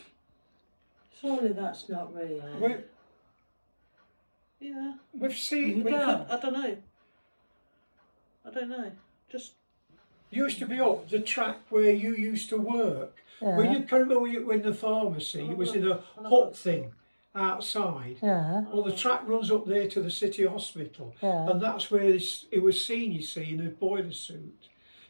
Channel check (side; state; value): both; inverted; correlation -1.00